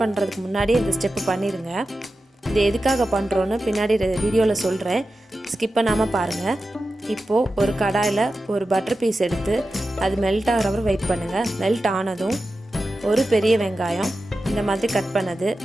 பண்ணுறதுக்கு முன்னாடியே இந்த ஸ்டெப்பு பண்ணிடுங்க. இது எதுக்காக பண்ணுறோன்னு பின்னாடி வீடியோவில் சொல்கிறேன், ஸ்கிப் பண்ணாமல் பாருங்கள். இப்போது ஒரு கடாயில் ஒரு பட்டர் பீஸ் எடுத்து அது மெல்ட் ஆகிற வரை வெயிட் பண்ணுங்கள். மெல்ட் ஆனதும் ஒரு பெரிய வெங்காயம் இந்த மாதிரி கட் பண்ணது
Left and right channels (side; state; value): both; normal; correlation 0.92